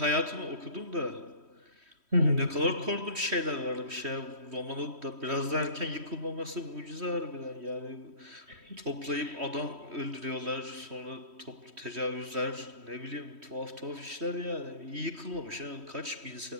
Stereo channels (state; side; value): late; left; 3.1 ms